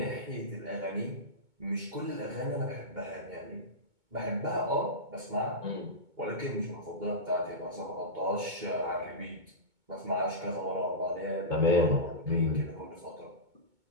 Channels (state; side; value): late; left; 2.2 ms